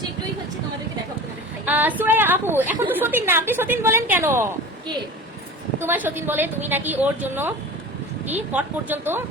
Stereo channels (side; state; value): both; normal; correlation 0.35